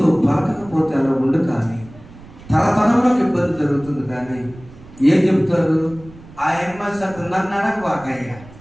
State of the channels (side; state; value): right; noise; rumble, 20 dB below the sound